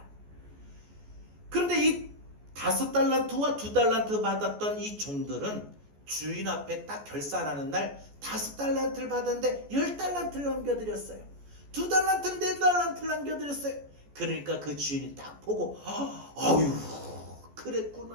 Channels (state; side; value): late; left; 14 ms